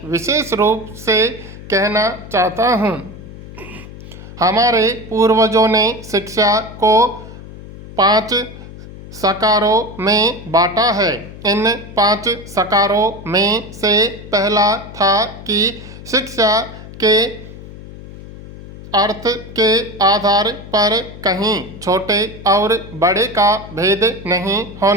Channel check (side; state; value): left; noise; hum, 15 dB below the sound